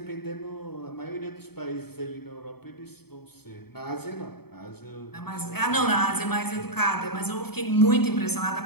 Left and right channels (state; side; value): late; right; 0.96 ms